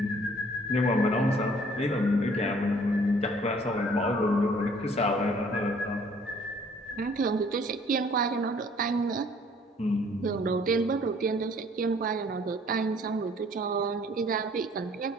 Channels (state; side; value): normal; both; correlation 0.57